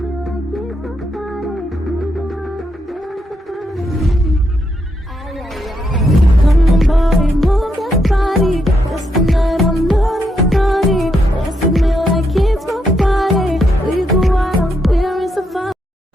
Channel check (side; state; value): both; normal; correlation 0.80